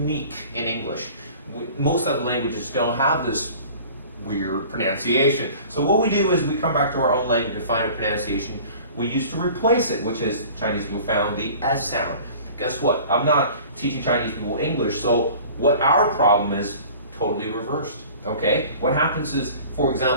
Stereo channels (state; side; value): inverted; both; correlation -0.44